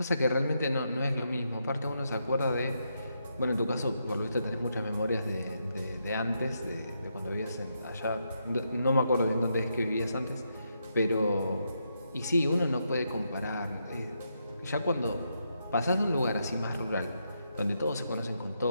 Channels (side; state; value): both; inverted; correlation -0.81